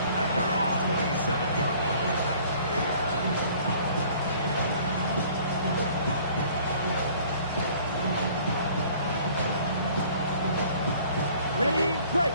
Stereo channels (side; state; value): both; inverted; correlation -0.53